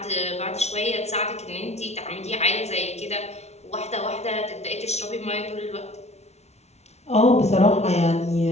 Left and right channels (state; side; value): late; right; 0.31 ms